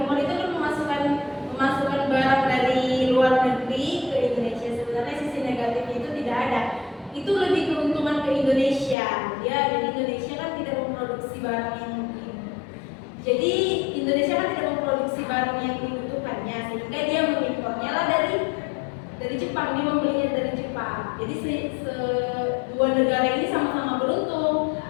impor itu kan memasukkan barang dari luar negeri ke Indonesia. Sebenarnya sisi negatifnya itu tidak ada. Itu lebih keuntungan ke Indonesia. Ya, jadi Indonesia kan tidak memproduksi barang yang jadi Indonesia kan tidak memproduksi barang yang dibutuhkannya, sehingga dia mengimpornya lah dari Jepang, dia membelinya dari Jepang. Jadi dua negara ini sama-sama beruntung.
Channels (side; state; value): right; drops out; at 9.0 s